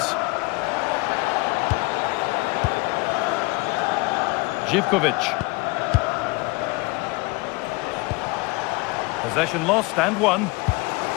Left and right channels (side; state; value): right; quieter; 25.5 dB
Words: Živković. Possession lost and won.